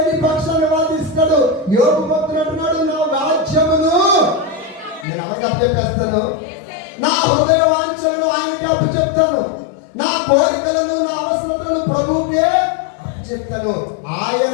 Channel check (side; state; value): right; drops out; at 5.1 s